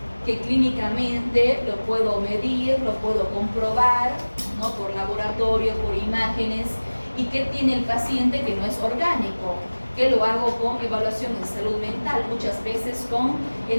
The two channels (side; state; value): both; inverted; correlation -1.00